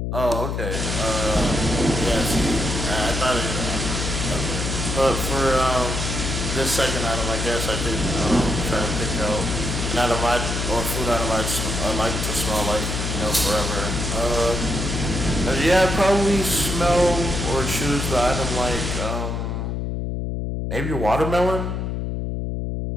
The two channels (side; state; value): left; noise; hum, 2 dB below the sound